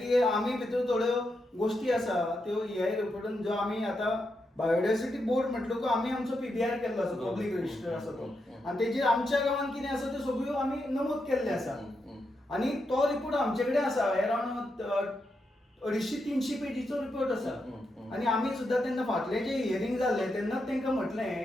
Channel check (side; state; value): both; normal; correlation 0.84